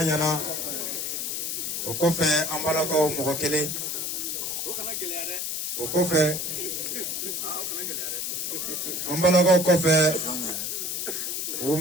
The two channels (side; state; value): left; noise; hiss, 2 dB below the sound